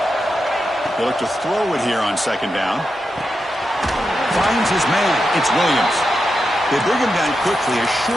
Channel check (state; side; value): normal; both; correlation 0.88